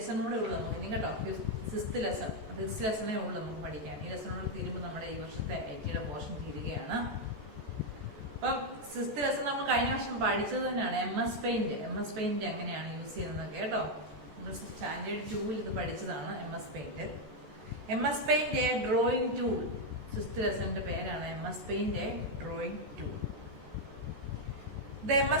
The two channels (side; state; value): left; late; 14 ms